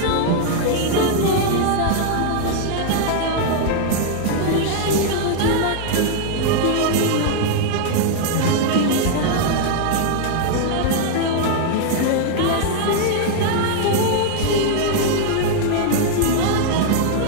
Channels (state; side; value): different; both; correlation 0.00